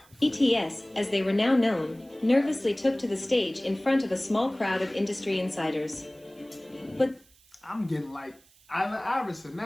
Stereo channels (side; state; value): right; noise; hiss, 29 dB below the sound